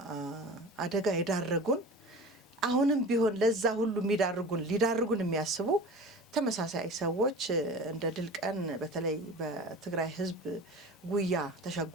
አደጋ ይዳረጉን አሁንም ቢሆን ለዛ ሁሉ ሊዳርጉን የሚያስቡ ተመሳሳይ ሰዎች እንደ ድል ቀን በተለይ በትግራይ ህዝብ ጉያ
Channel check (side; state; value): both; normal; correlation 0.36